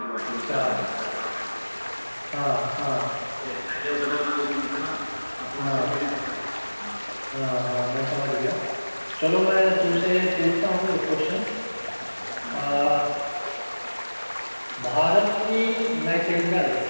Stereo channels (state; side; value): inverted; both; correlation -1.00